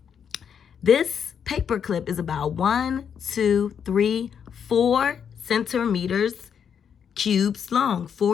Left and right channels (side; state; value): right; quieter; 7.6 dB